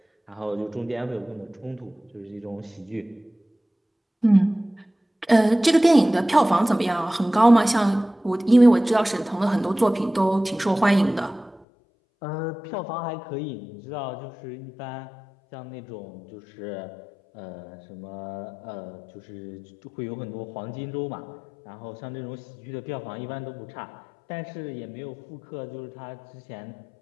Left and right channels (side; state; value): right; drops out; at 11.7 s